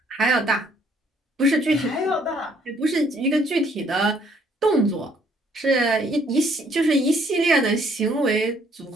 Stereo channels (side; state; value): both; normal; correlation 0.64